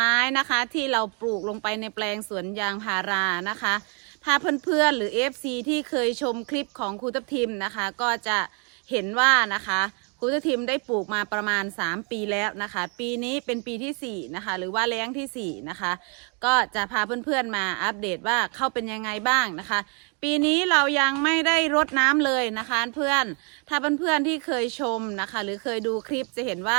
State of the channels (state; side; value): quieter; left; 36.8 dB